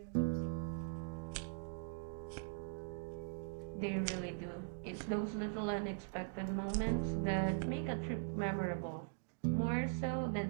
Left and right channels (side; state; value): left; silent; digital silence